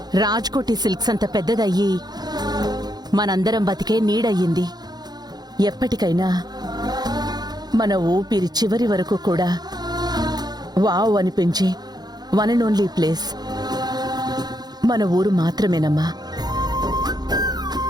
రాజ్కోటి సిల్క్స్ అంత పెద్దదయ్యి మనందరం బతికే నీడయ్యింది. ఎప్పటికైనా మన ఊపిరి చివరి వరకు కూడా వావ్ అనిపించే వన్ అండ్ ఓన్లీ ప్లేస్ మన ఊరు మాత్రమేనమ్మా.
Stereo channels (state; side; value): late; left; 0.19 ms